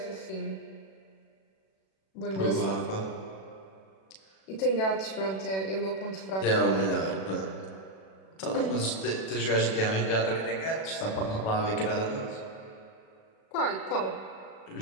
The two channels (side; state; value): right; late; 37 ms